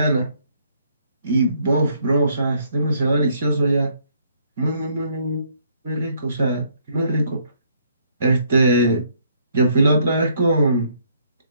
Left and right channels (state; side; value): inverted; both; correlation -0.67